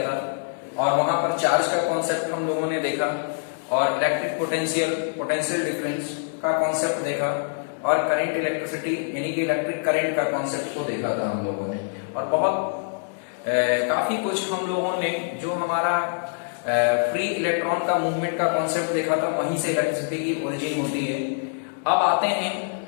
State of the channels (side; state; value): right; silent; digital silence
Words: और वहां पर चार्ज का कॉन्सेप्ट हम लोगों ने देखा और इलेक्ट्रिक पोटेंशियल डिफरेंस का कॉन्सेप्ट देखा और करंट इलेक्ट्रिसिटी यानी कि इलेक्ट्रिक करंट का कॉन्सेप्ट को देखा था हम लोगों ने। और बहुत काफी कुछ हम लोगों ने जो हमारा फ्री इलेक्ट्रॉन का मूवमेंट का कॉन्सेप्ट देखा था, वहीं से इलेक्ट्रिसिटी की ओरिजिन होती है। अब आते हैं